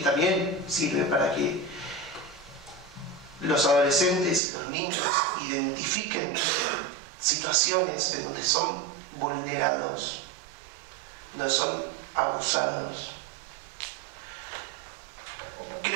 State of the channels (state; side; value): drops out; left; at 4.4 s